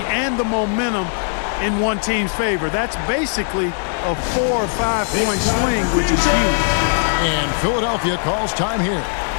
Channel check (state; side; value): silent; right; digital silence